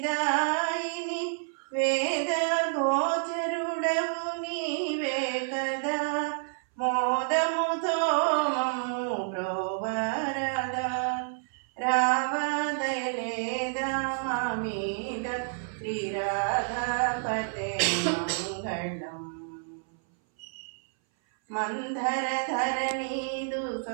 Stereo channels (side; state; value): left; silent; 58 dB below the other